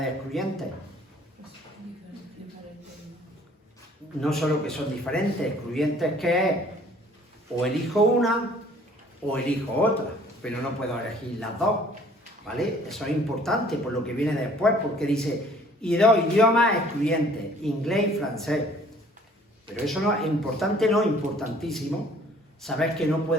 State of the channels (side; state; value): both; normal; correlation 0.56